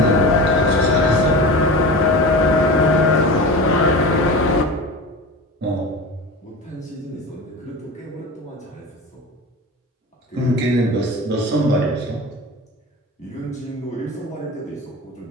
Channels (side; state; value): both; normal; correlation 0.30